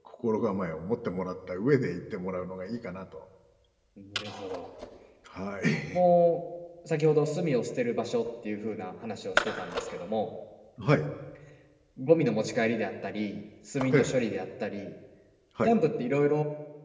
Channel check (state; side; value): identical; both; correlation 1.00